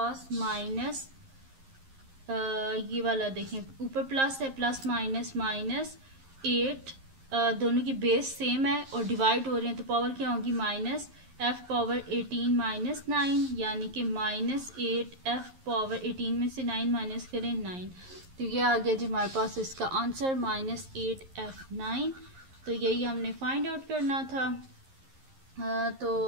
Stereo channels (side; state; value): left; late; 11 ms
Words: माइनस ये वाला देखें ऊपर प्लस है, प्लस माइनस माइनस 8, दोनों की बेस सेम है और डिवाइड हो रहे हैं तो पावर क्या होगी माइनस f पावर 18 माइनस 9, यानी कि -8 f पावर 18 में से 9 माइनस करें 9। तो ये आ गया जी हमारे पास इसका आंसर -8 f9। तो यही हमने फाइंड आउट करना था।